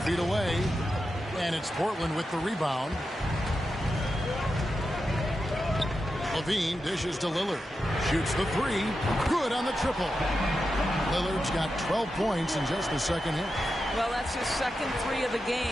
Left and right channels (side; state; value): both; normal; correlation 0.89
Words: feet away. And it's Portland with the rebound. Levine dishes to Lillard. Shoots the 3. Good on the triple. Lillard's got 12 points in just the second hit. Well, that's his second 3 of the